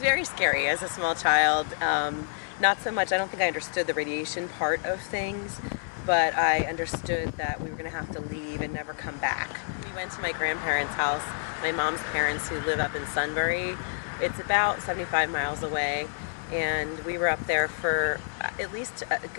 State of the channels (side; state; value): right; silent; digital silence